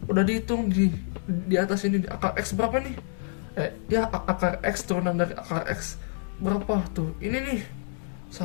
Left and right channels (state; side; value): silent; right; digital silence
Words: udah dihitung di atas ini akar X berapa nih? Ya akar X turunan dari akar X berapa tuh? Ini nih